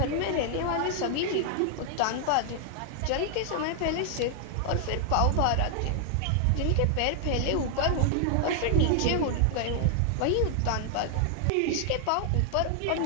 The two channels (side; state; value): both; different; correlation 0.00